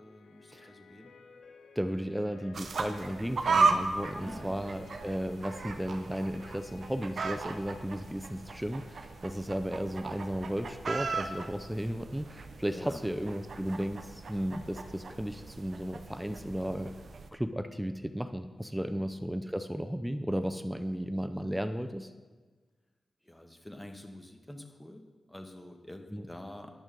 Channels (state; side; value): normal; both; correlation 0.95